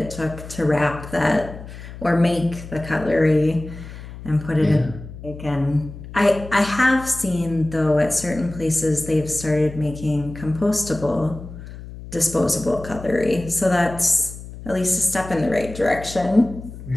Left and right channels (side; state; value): left; noise; hum, 13 dB below the sound